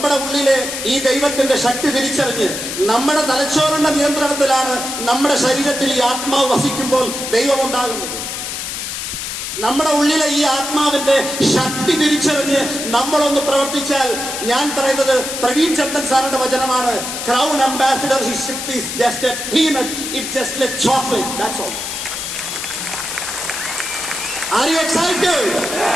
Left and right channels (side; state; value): left; noise; hiss, 5 dB below the sound